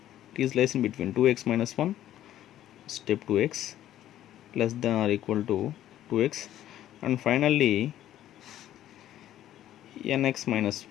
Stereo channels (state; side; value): quieter; right; 12.5 dB